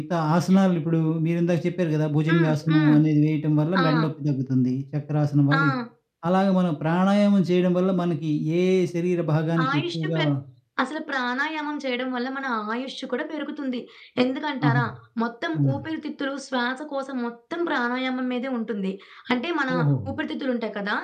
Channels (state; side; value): identical; both; correlation 1.00